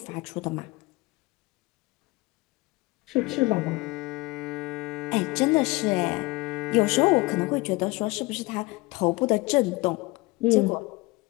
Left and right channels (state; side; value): quieter; right; 22.8 dB